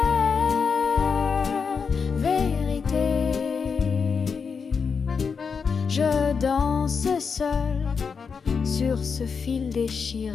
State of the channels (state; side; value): quieter; right; 5.7 dB